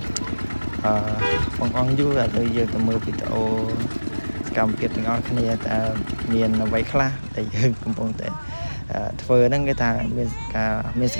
បងអង្គយូរឥឡូវយើងទៅមើលវីដេអូសកម្មភាពទាំងអស់គ្នាតើមានអ្វីខ្លះដែលយើងកំពុងតែធ្វើហ្នឹងគេថាមានស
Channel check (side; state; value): both; inverted; correlation -1.00